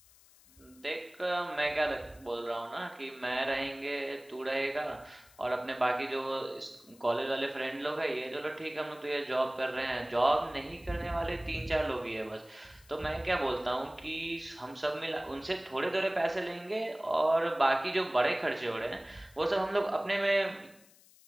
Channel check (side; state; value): left; noise; hiss, 26 dB below the sound